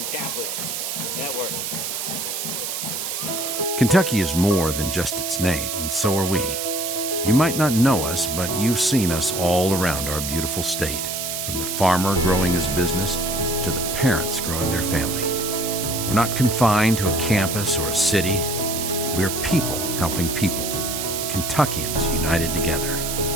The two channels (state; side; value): noise; right; hiss, 3 dB below the sound